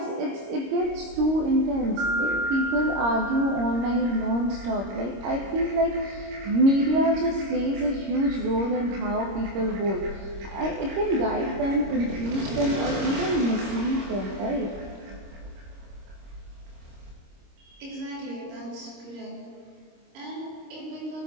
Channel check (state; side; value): late; left; 26 ms